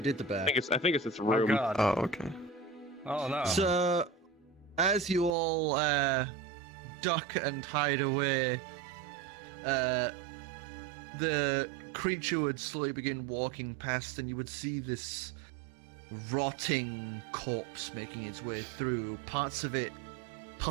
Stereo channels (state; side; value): drops out; left; at 5.4 s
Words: did the I back. think it's its Oh room. god. Oh, okay. Oh no. So, as you all duck and hide away, the creature would slowly begin walking past, and you would see this rotting corpse making its way through. Parts of it